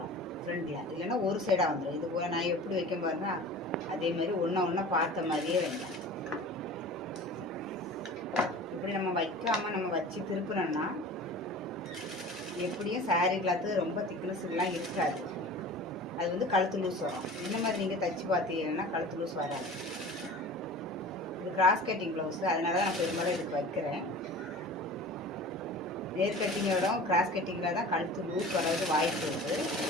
ஃப்ரண்டில். இல்லைன்னா ஒரு சைடாக வந்துடும். இது போல் நான் எப்படி வைக்க பாருங்க, அதே மாதிரி ஒன்றா பார்த்த மாதிரியே வைங்க. இப்படி நம்ம வைக்காமல் நம்ம வச்சு திருப்பினோம்னா எப்படியும் சாரீ கிளாத்து ரொம்ப திக்னஸ்லாம் இருக்காது. அது வந்து கழுத்து லூஸ் வரும். இந்த மாதிரி நீங்கள் தைச்சி பார்த்தீங்கன்னா கழுத்து லூஸ் வராது. இது கிராஸ் கட்டிங் ப்ளவுஸு, அதனால தான் நான் பெரும்பாலும் இதுக்கு வைக்கிறேன். நேர் கட்டிங்கோட கிராஸ் கட்டிங்கில் தான் கழுத்து லூஸ் வர்றது வாய்ப்பு இருக்குது.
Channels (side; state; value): both; normal; correlation 0.39